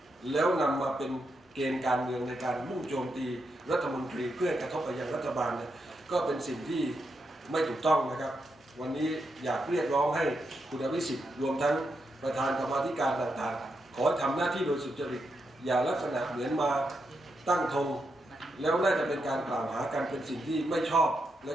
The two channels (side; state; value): both; normal; correlation 0.83